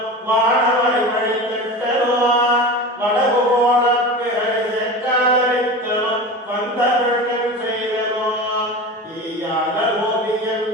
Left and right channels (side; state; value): both; normal; correlation 0.30